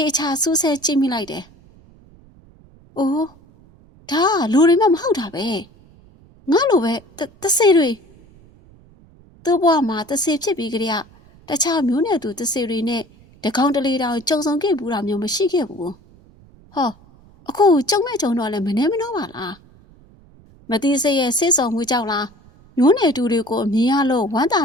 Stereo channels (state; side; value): noise; right; rumble, 26 dB below the sound